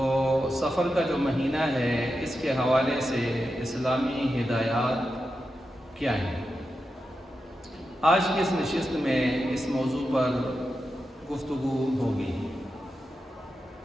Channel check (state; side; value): normal; both; correlation 0.89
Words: سفر کا جو مہینہ ہے اس کے حوالے سے اسلامی ہدایات کیا ہیں؟ آج کی اس نشست میں اس موضوع پر گفتگو ہوگی.